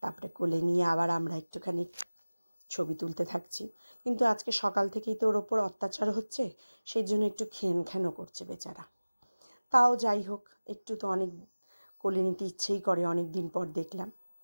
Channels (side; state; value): both; inverted; correlation -0.99